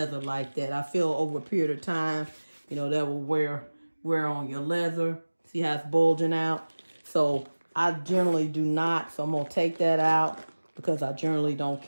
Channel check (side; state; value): both; inverted; correlation -1.00